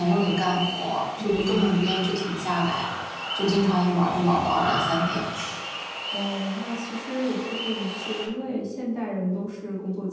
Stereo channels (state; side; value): identical; both; correlation 1.00